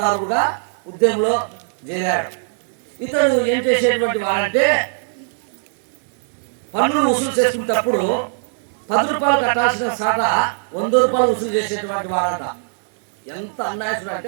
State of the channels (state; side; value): silent; left; digital silence